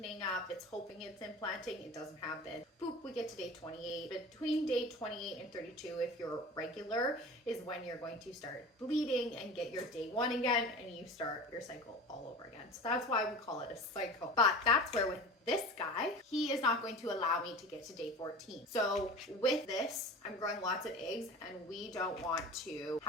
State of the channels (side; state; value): both; normal; correlation 0.35